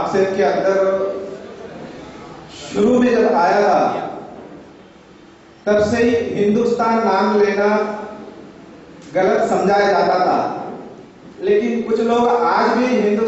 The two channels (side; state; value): both; identical; correlation 1.00